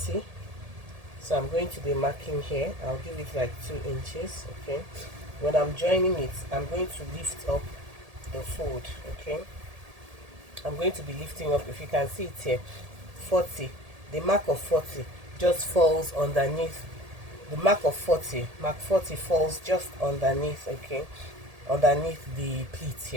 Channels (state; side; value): late; left; 1.8 ms